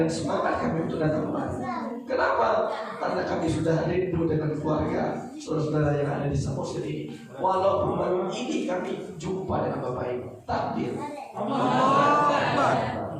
semangat kami untuk datang kemari. Kenapa? Karena kami sudah rindu dengan keluarga saudara-saudara yang ada di Samosir ini. Walaupun baru ini kami jumpa dengan Bapak Ibu. Takbir.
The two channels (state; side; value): identical; both; correlation 1.00